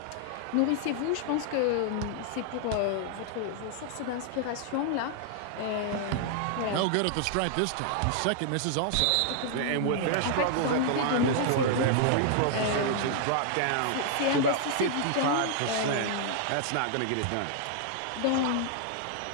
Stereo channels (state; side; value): different; both; correlation -0.01